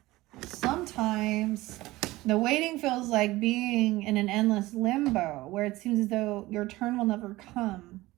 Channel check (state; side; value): quieter; left; 18.7 dB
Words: Sometimes the waiting feels like being in an endless limbo where it seems as though your turn will never come.